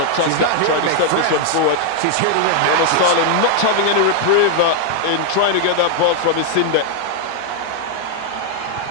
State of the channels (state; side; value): different; both; correlation 0.00